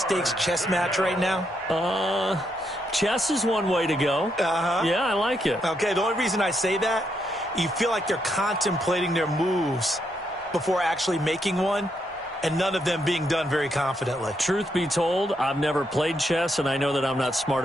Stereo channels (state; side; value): normal; both; correlation 0.79